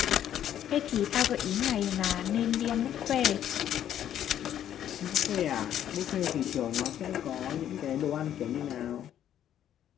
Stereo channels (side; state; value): right; quieter; 10.6 dB